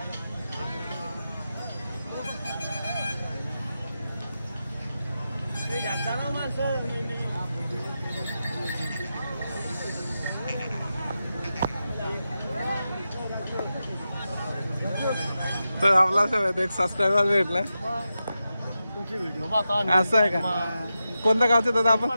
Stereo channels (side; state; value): both; inverted; correlation -0.90